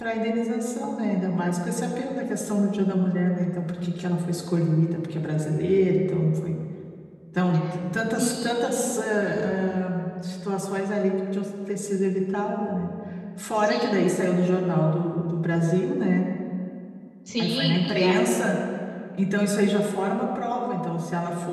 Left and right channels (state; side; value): identical; both; correlation 1.00